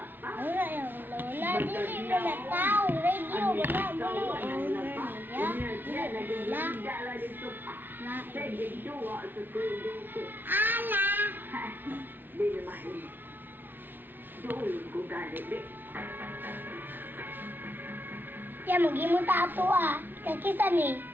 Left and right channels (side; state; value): left; late; 0.094 ms